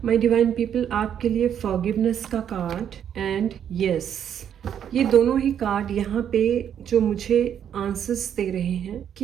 divine people, आपके लिए फॉरगिवनेस का कार्ड एंड यस, ये दोनों ही कार्ड यहाँ पे जो मुझे आंसर्स दे रहे हैं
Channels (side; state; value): left; quieter; 9.1 dB